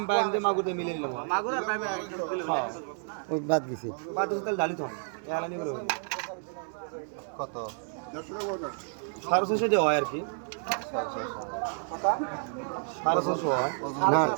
বায়াম দিয়ে মাগুর দিয়ে মিলে নিলাম হয় মাগুর আর পাইবে হ্যাঁ ওই বাদ গেছি বাদ দিতে তাহলে ডালি তো এহলা নিবার হবে কত 650 টাকা হয় আর কি 650 হয় না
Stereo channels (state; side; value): silent; left; 57 dB below the other